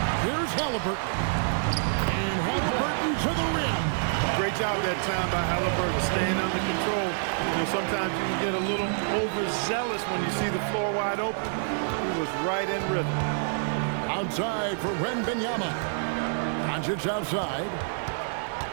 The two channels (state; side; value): silent; left; 60 dB below the other